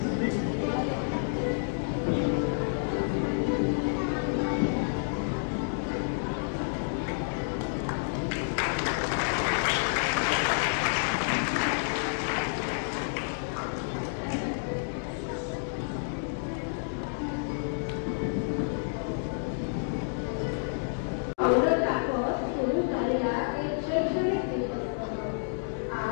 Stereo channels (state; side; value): silent; right; digital silence